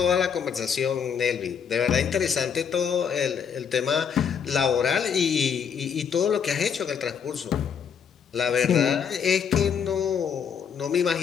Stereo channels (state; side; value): quieter; right; 7.2 dB